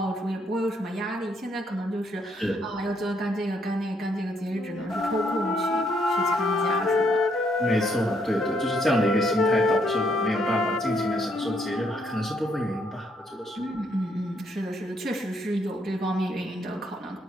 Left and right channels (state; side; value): normal; both; correlation 0.72